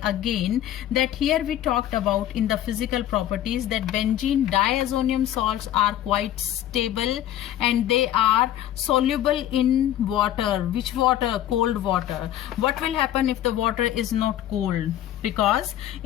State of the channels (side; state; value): right; quieter; 12.2 dB